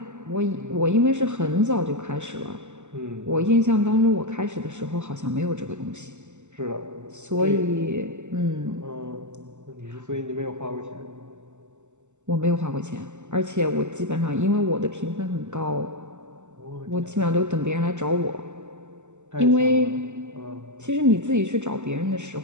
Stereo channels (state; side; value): late; left; 0.84 ms